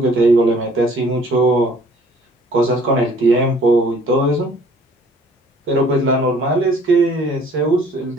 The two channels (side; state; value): both; normal; correlation 0.56